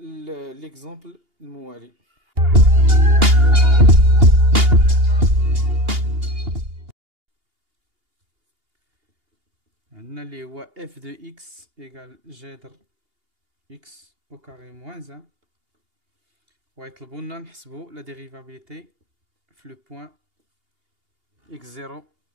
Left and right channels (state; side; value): late; left; 2.8 ms